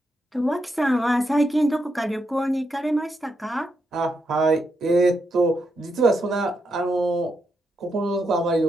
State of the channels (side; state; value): both; normal; correlation 0.82